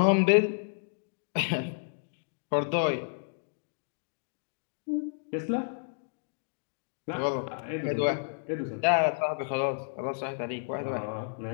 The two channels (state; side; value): silent; right; digital silence